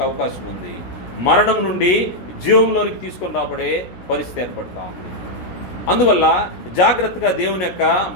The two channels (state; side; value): late; right; 17 ms